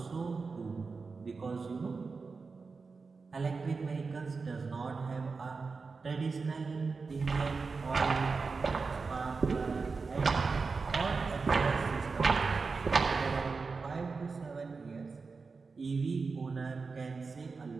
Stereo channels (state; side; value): quieter; left; 4.5 dB